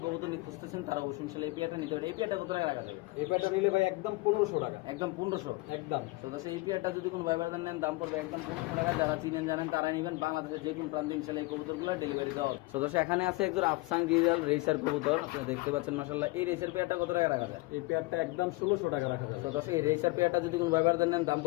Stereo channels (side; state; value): right; quieter; 23.0 dB